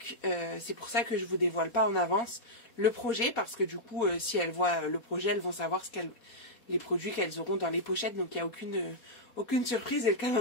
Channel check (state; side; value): late; right; 4.2 ms